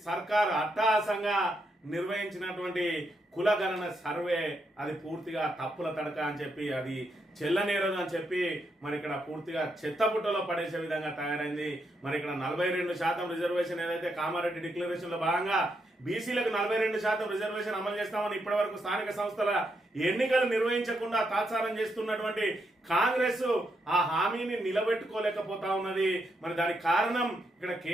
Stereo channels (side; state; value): both; normal; correlation 0.80